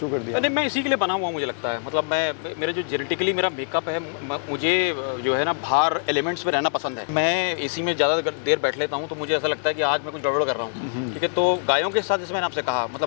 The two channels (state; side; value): silent; right; digital silence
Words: कर दिया? नहीं, मैं इसी के लिए बना हुआ, मुझे लगता है। मतलब मेरे जो जेनेटिकली मेरा मेकअप है, मुझे जो है ना बाहर एलिमेंट्स में रहना पसंद है। मैं एसी में ज़्यादा देर बैठ लेता हूँ तो मुझे ऐसा लगता है कि आज मैं कुछ गड़बड़ कर रहा हूँ, ठीक है। तो गायों के साथ जैसे मैंने आपसे कहा,